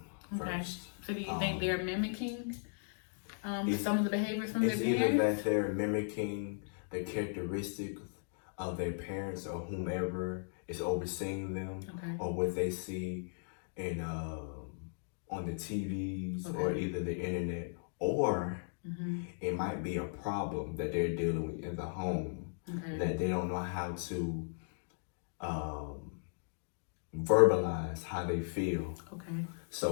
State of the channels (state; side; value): silent; right; digital silence